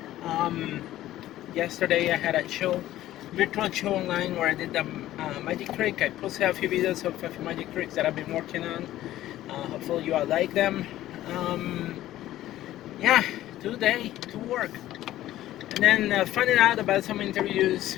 Um, Yesterday, I had a show, virtual show online where I did the magic trick. I posted a few videos of a few magic tricks that I've been working on. Hopefully, you all like them. Um, yeah, today to work. And then finding out about some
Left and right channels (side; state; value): right; quieter; 14.2 dB